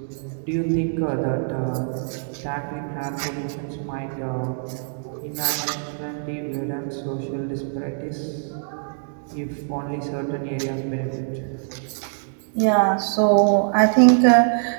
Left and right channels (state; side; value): silent; left; digital silence